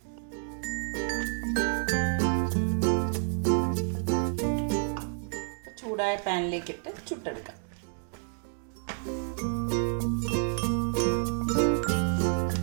ചൂടായ പാനിലേക്കിട്ട് ചുട്ടെടുക്കാം.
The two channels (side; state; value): left; silent; 58 dB below the other